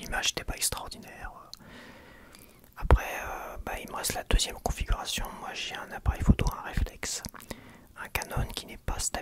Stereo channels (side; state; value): both; identical; correlation 1.00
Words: n'était pas extraordinaire. Après bah, il me reste la deuxième configuration. Moi j'ai un appareil photo, un réflexe, un Canon qui n'est pas